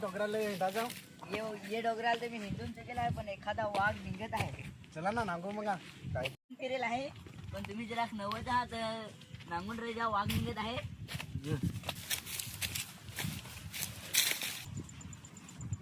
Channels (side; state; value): both; identical; correlation 1.00